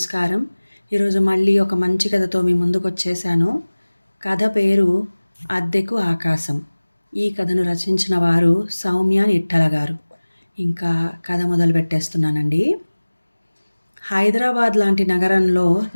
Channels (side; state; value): both; inverted; correlation -1.00